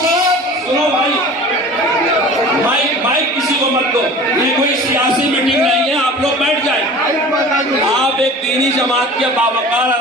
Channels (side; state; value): both; normal; correlation 0.40